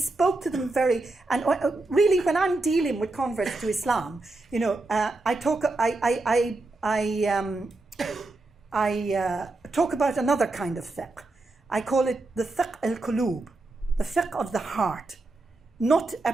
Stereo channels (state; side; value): quieter; left; 3.1 dB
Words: to them really when I'm dealing with converts to Islam, I talk about another kind of fiqh. I call it the fiqh al-qulub, the fiqh of the heart, not a